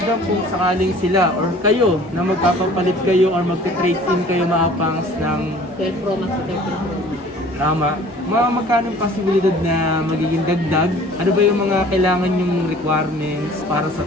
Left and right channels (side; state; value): both; normal; correlation 0.49